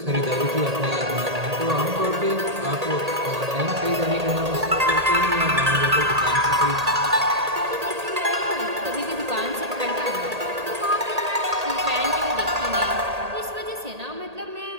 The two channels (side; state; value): left; late; 1.8 ms